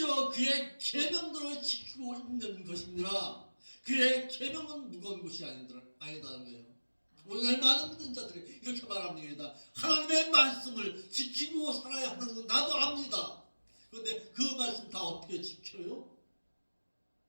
그의 계명들을 지키고 있는 것이니라. 그의 계명은 무거운 것이 아니다는 거예요. 오늘 많은 믿는 자들이 이렇게 말합니다. 하나님의 말씀을 지키고 살아야 하는 건 나도 압니다. 그런데 그 말씀 다 어떻게 지켜요?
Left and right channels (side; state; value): both; inverted; correlation -1.00